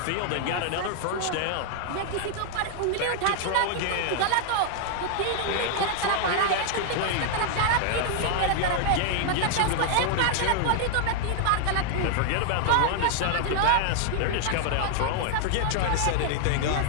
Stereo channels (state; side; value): different; both; correlation -0.01